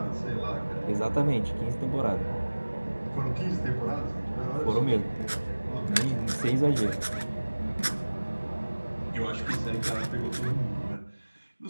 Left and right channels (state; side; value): inverted; both; correlation -1.00